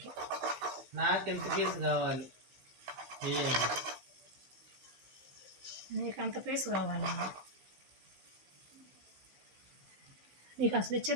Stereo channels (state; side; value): late; left; 15 ms